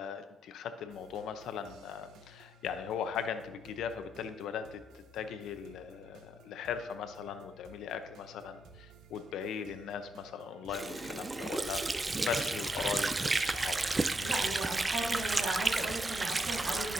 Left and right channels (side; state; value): both; normal; correlation 0.79